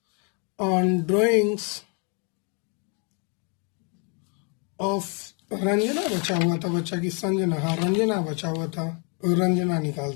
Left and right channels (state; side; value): quieter; right; 36.5 dB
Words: on drawings of Ranjana बचा हुआ था, बच्चा की संजना, हाँ रंजना बचा हुआ था, रंजना